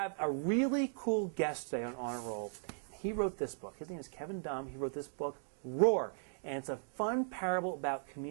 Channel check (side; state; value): left; silent; digital silence